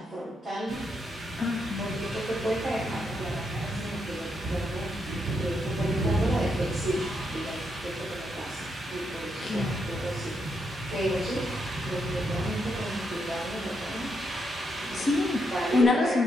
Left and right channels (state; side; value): normal; both; correlation 0.80